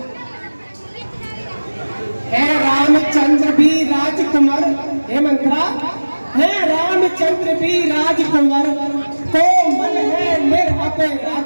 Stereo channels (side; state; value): both; inverted; correlation -1.00